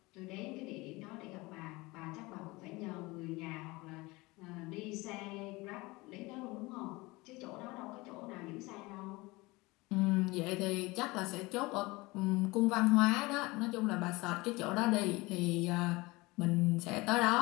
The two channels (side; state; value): right; quieter; 22.7 dB